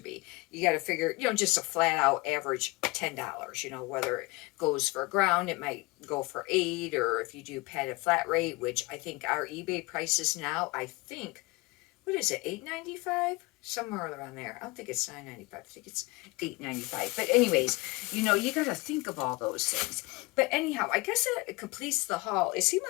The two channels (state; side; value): quieter; right; 24.3 dB